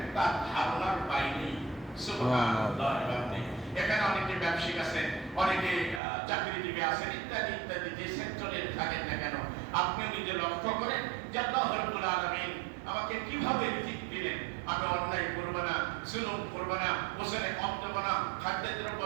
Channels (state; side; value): drops out; left; at 6.0 s